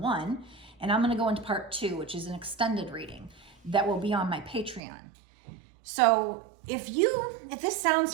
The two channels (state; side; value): drops out; left; at 4.8 s